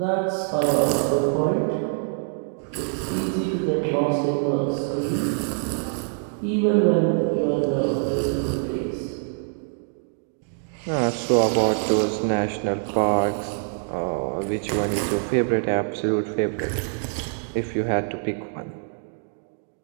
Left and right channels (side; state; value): left; silent; digital silence